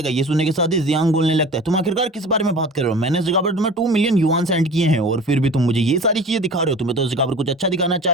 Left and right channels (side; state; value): both; normal; correlation 0.39